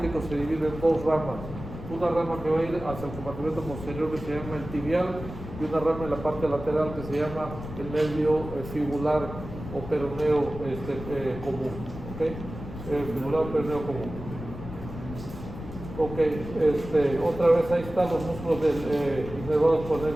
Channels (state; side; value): noise; left; rumble, 11 dB below the sound